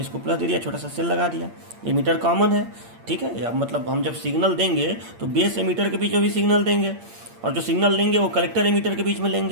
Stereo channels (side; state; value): left; late; 8.7 ms